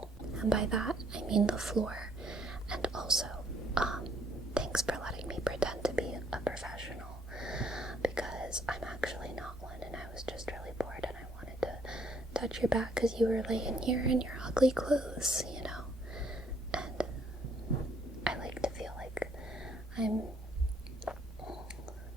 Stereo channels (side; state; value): both; normal; correlation 0.66